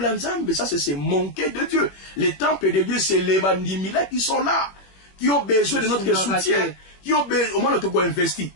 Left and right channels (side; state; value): right; late; 21 ms